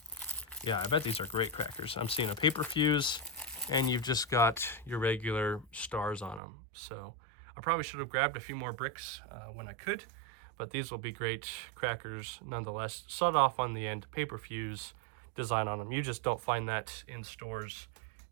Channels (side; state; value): left; drops out; at 6.4 s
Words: yeah, I bet these are great crackers. I'm seeing a paper fuse, and you've just got your regular stars on them. So I probably should have grabbed a few more bricks when I could, but these will be great crackers nonetheless. Sawed off on the end, paper fuse design on them. You just don't find that in stores